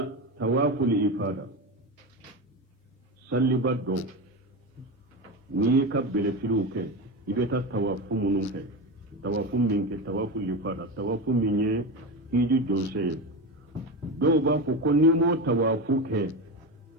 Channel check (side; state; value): both; normal; correlation 0.20